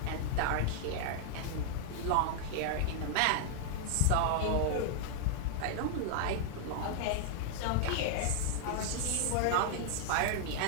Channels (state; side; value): different; both; correlation -0.01